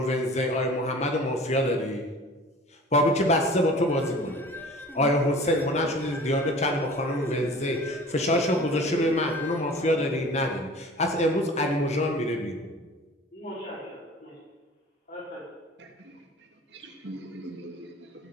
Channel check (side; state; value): both; normal; correlation 0.44